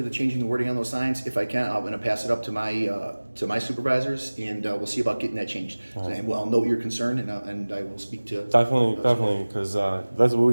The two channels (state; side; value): inverted; both; correlation -1.00